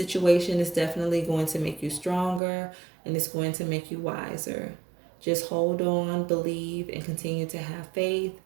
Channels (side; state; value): left; drops out; at 2.4 s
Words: is definitely going to make you stronger, and it's going to make you wiser. Just hold on, believe, and continue to have faith.